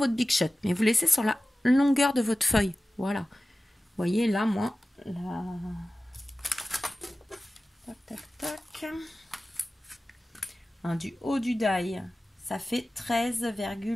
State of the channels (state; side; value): normal; both; correlation 0.95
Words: Big Shot, mais vous laissez sur la longueur de votre feuille. Voilà. Vous voyez, là, moi, là... Tac, tac, tac. Hein, du haut du die, ça fait 13,